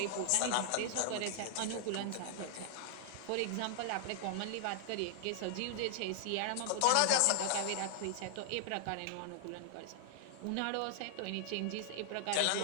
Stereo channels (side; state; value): both; different; correlation 0.00